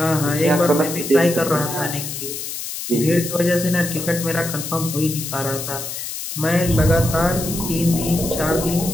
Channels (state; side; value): noise; left; hiss, 7 dB below the sound